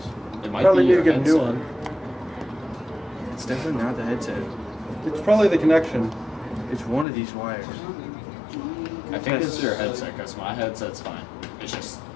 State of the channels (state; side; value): drops out; right; at 7.1 s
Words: It might Probably be need your to get a new headset. one. It's definitely not the headset. It's probably the connection. It's one of these wires. I think it's your headset, because my headset's fine. It's just...